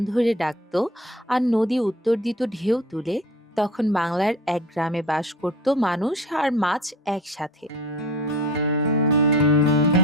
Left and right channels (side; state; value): both; normal; correlation 0.40